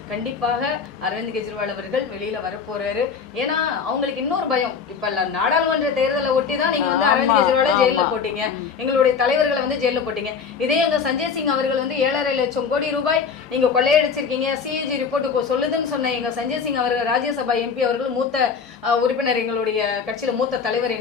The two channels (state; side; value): quieter; right; 6.0 dB